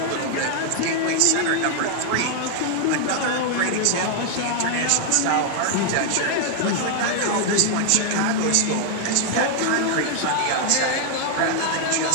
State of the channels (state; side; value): different; both; correlation 0.00